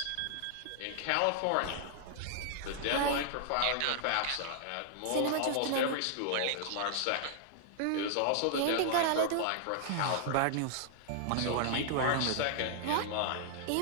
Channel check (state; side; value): different; both; correlation -0.01